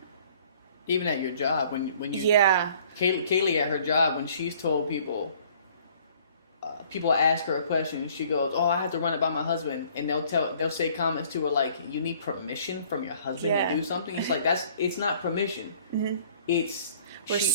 Even at your job, when you yeah. Kaylee at her job, when she's told people ask her a question and she goes, "Oh, I have to run it by my husband," and they'll say comments to her like, "You need permission from your husband to do something." It's like it's not permission. Mm-hmm. It's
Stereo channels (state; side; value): inverted; both; correlation -0.56